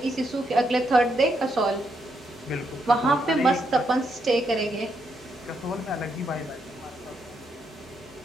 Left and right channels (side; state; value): both; normal; correlation 0.78